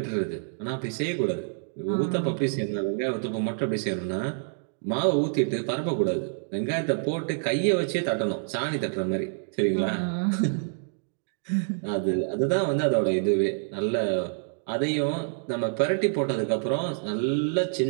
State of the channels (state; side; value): silent; left; digital silence